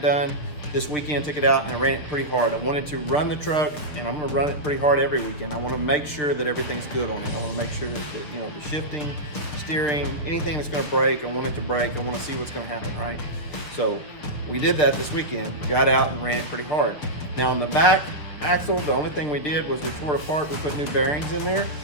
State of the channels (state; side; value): late; right; 6.7 ms